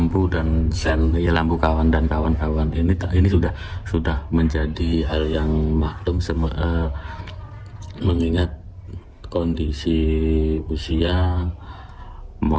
dan sen, ya lampu kawan dan kawan-kawan ini sudah menjadi hal yang maklum mengingat kondisi usia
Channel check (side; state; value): both; identical; correlation 1.00